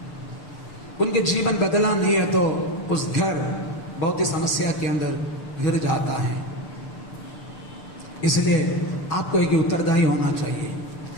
उनके जीवन बदला नहीं है तो उस घर बहुत ही समस्या के अंदर गिर जाता है। इसलिए आपको एक उत्तरदायी होना चाहिए।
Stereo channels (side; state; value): right; late; 6.7 ms